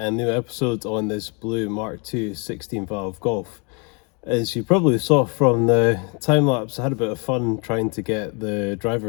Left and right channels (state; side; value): quieter; right; 33.6 dB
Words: new episode on this blue Mark II 16 valve Golf. As you probably saw from the time lapse, I had a bit of fun trying to get the